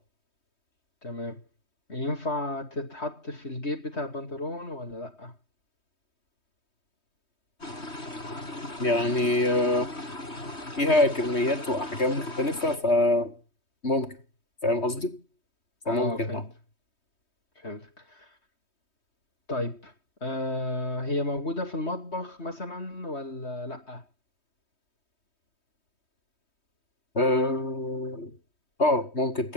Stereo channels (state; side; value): late; right; 3.2 ms